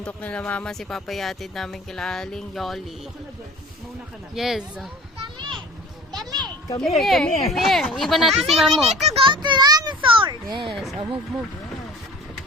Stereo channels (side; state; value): both; normal; correlation 0.43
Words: nila mama. Si Papa yatid namin kila Aling Yoli. Yes. Come here. Iba natin si Mamo. We need to go to dinosaurs. Yes. Oh, move.